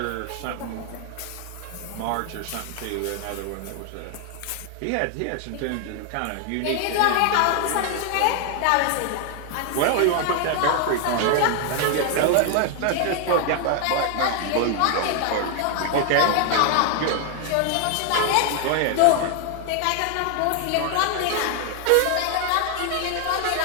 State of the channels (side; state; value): both; different; correlation 0.00